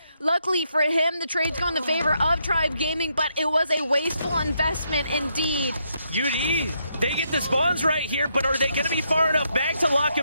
Luckily for him, the trade's go in the favor of Tribe Gaming, but it was a wasteful investment indeed. UD, they get the spawns right here, but are they going to be far enough back to lock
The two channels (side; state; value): both; inverted; correlation -0.77